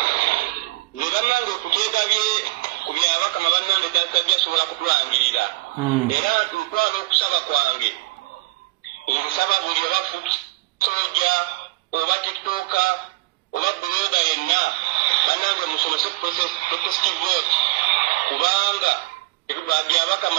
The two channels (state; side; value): quieter; left; 21.4 dB